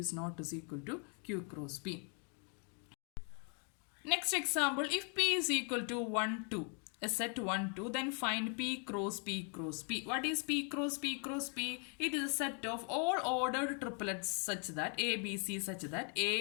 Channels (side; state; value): right; quieter; 39.5 dB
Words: not is equal to Q cross P. Next example, if P is equal to 1, 2, a set 1, 2, then find P cross P cross P. What is P cross P cross P? It is a set of all ordered triplets such that A, B, C such that